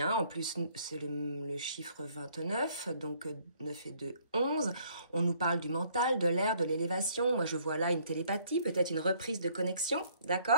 En plus, c'est le chiffre 29, donc 9 et 2, 11. On nous parle du mental, de l'air, de l'élévation. Moi, je vois là une télépathie, peut-être une reprise de connexion,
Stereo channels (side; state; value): both; inverted; correlation -0.63